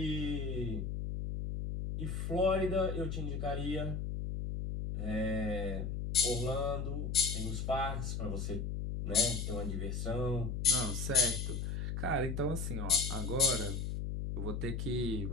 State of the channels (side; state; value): left; noise; hum, 2 dB below the sound